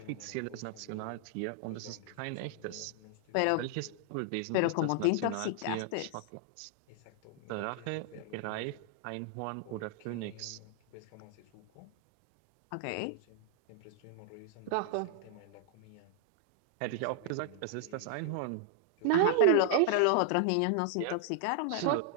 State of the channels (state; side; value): different; both; correlation -0.01